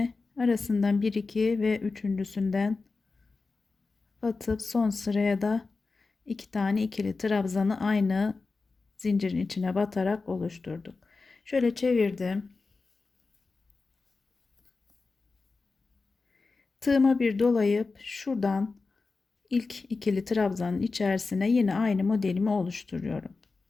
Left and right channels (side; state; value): right; quieter; 4.0 dB